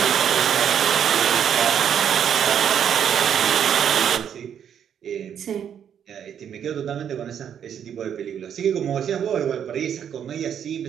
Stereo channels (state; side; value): quieter; left; 8.7 dB